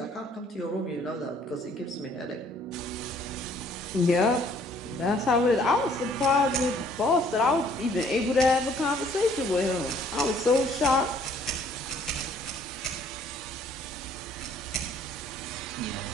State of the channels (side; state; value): both; normal; correlation 0.60